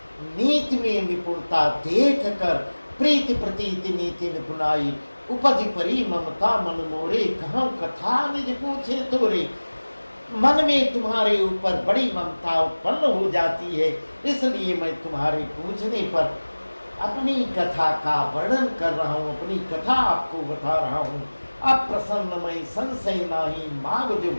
नीति में निपुणता देख कर प्रीति प्रतीति नीति निपुणाई। उपज परी ममता मन मोरे, कहाँ कथा निज पूछे तोरे। मन में तुम्हारे ऊपर बड़ी ममता उत्पन्न हो जाती है, इसलिए मैं तुम्हारे पूछने पर अपनी कथा का वर्णन कर रहा हूँ, अपनी कथा आपको बता रहा हूँ। अब प्रसन्न मैं संशय नाही, माग जो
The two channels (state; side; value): inverted; both; correlation -1.00